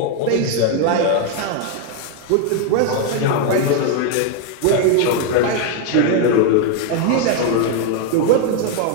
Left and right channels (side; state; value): both; different; correlation 0.01